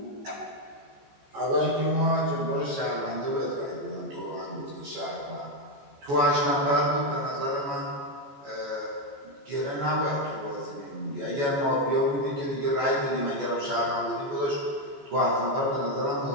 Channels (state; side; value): late; left; 14 ms